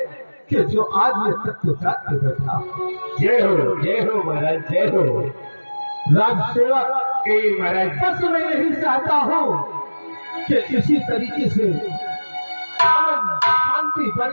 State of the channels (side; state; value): both; inverted; correlation -1.00